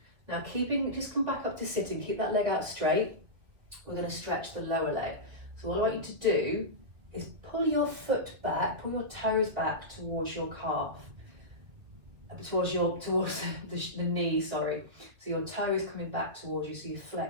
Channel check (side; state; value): left; late; 2.2 ms